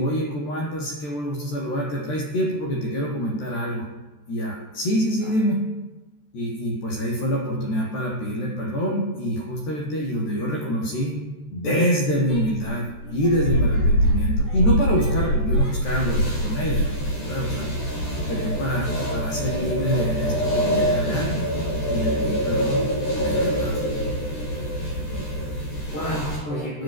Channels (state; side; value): late; right; 14 ms